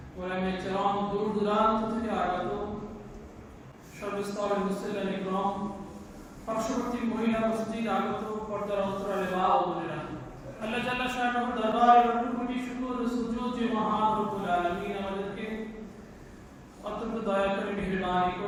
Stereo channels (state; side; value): identical; both; correlation 1.00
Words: ওলামায়ে কেরাম, দূর দূরান্ত থেকে আগত সর্বস্তরের মুসলিম ইকরাম, পার্শ্ববর্তী মহিলা মসজিদ আগত পর্দার অন্তরালে মা ও বোনেরা, আল্লাহ জাল্লা শাআনুহু দরবারে লাখ কোটি শুকর ও সুজুদ যে মহান রব্বুল আলামিন আমাদেরকে অত্যন্ত দয়া করে মেহেরবানি